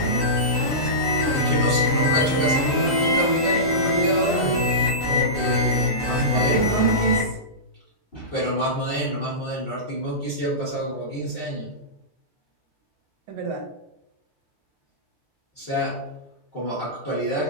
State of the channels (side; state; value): both; normal; correlation -0.19